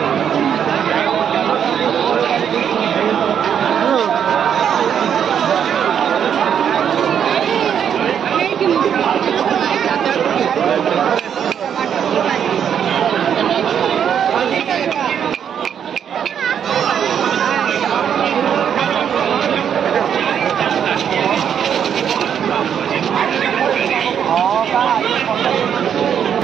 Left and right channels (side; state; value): left; quieter; 8.4 dB